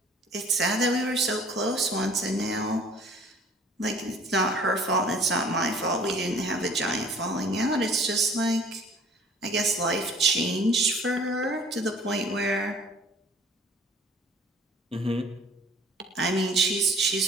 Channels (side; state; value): both; normal; correlation 0.51